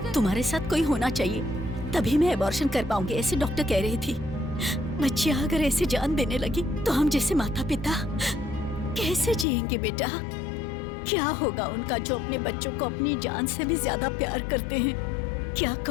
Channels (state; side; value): drops out; right; at 9.5 s